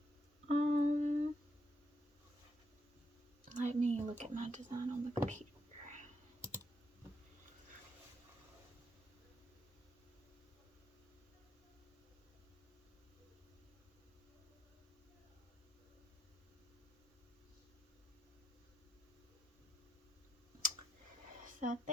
Let me look at my design on the computer. So I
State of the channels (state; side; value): normal; both; correlation 0.79